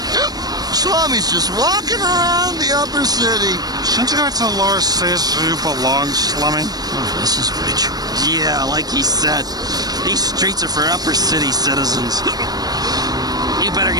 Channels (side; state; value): left; late; 0.19 ms